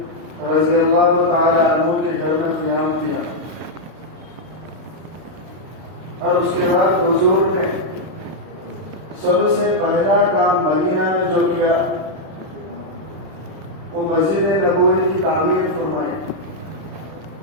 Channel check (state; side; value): late; left; 32 ms